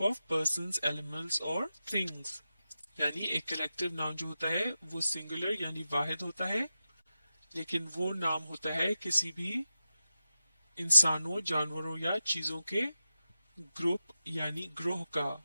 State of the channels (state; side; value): inverted; both; correlation -0.92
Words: of persons, animals or things। यानी एक कलेक्टिव नाउन जो होता है वो सिंगुलर यानी वाहिद होता है, लेकिन वो नाम होता है किसी भी इंसानों, जानवरों या चीजों के ग्रुप यानी ग्रोह का।